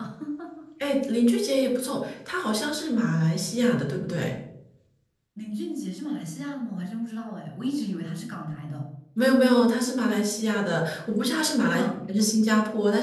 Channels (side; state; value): both; identical; correlation 1.00